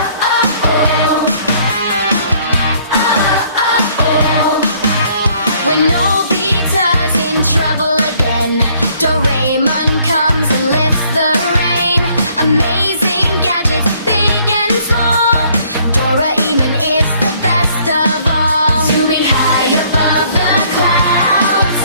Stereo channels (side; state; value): both; inverted; correlation -0.62